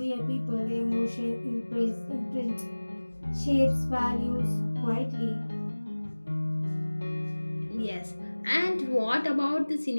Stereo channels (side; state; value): both; inverted; correlation -1.00